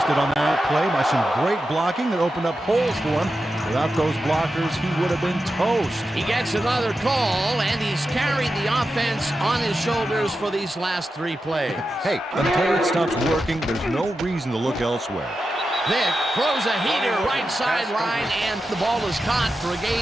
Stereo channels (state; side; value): normal; both; correlation 0.90